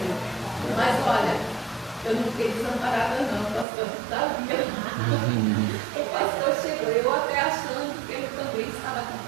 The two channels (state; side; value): drops out; left; at 3.7 s